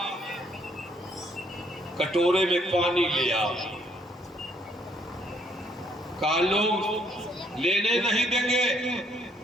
کٹورے میں پانی لیا. کہا لوگ لینے نہیں دیں گے.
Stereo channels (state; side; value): normal; both; correlation 0.67